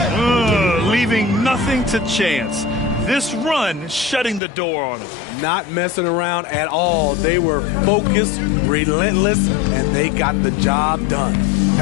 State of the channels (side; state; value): right; drops out; at 4.4 s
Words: Leaving nothing to chance. This run shutting the door on him. Not messing around at all. They were focused, relentless, and they got the job done.